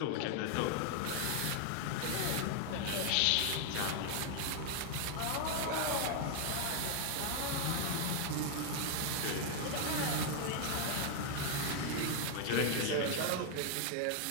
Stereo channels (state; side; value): different; both; correlation 0.00